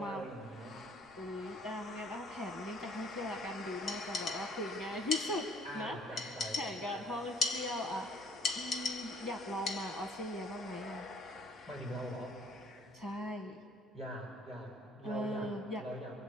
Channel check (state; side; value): normal; both; correlation 0.59